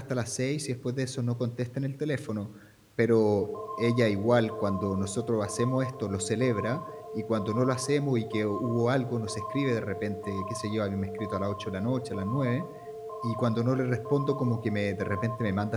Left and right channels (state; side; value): identical; both; correlation 1.00